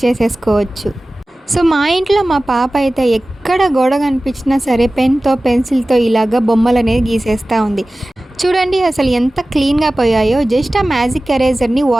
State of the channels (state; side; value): normal; both; correlation 0.97